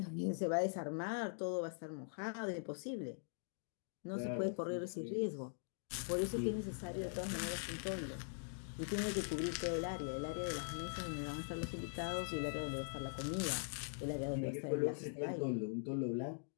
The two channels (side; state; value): right; silent; digital silence